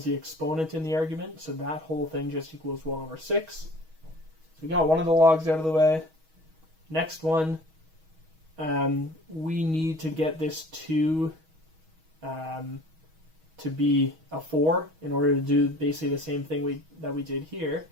the exponent in the argument, so that whole thing just equals 1 over 6. So we got one of the logs out of the way. Next one, we need to get this 2 to be a 4 in order to do basically the same thing that we did here.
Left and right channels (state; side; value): late; left; 6.3 ms